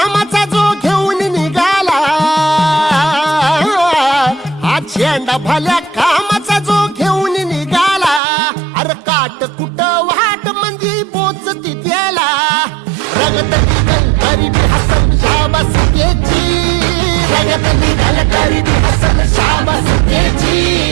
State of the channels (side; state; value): left; drops out; at 8.2 s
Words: जो घेऊन निघाला, हा झेंडा भल्या कामाचा जो घेऊन निघाला, अरे काट कुट वाट मंदी पोचती त्याला, रगत निघल तरी बी हसल शाबासकीची, रगत निघल तरी बी हसल शाबासकीची,